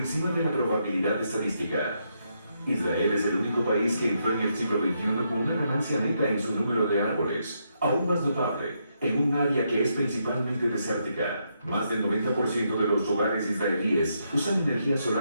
de la probabilidad estadística. Israel es el único país que entró en el siglo XXI con una ganancia neta en su número de árboles, aún más notable, en un área que es principalmente desértica. Más del 90% de los hogares israelíes usan energía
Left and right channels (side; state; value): both; inverted; correlation -0.79